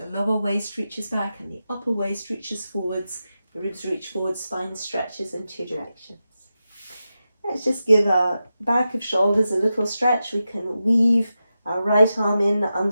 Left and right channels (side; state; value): both; inverted; correlation -0.91